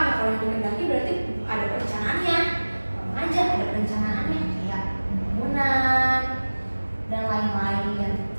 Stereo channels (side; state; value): both; inverted; correlation -1.00